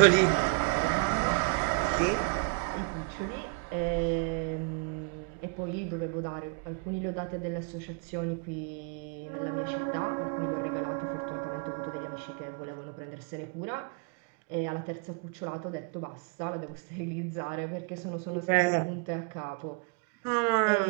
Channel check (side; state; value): left; quieter; 33.8 dB